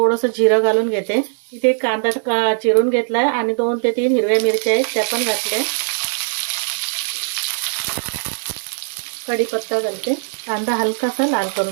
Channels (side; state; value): left; silent; 66 dB below the other